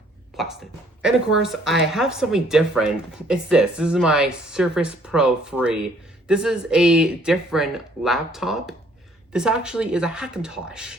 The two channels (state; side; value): normal; both; correlation 0.62